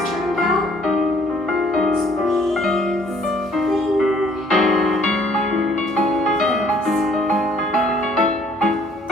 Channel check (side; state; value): both; normal; correlation 0.60